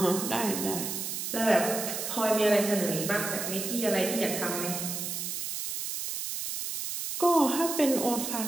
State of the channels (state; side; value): noise; right; hiss, 4 dB below the sound